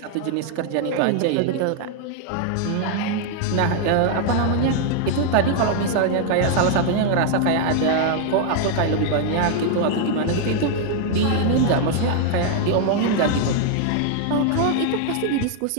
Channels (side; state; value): both; different; correlation 0.00